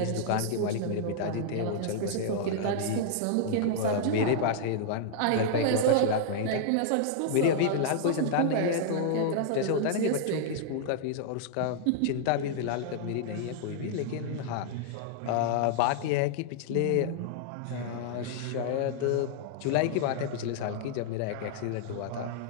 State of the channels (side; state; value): both; different; correlation -0.01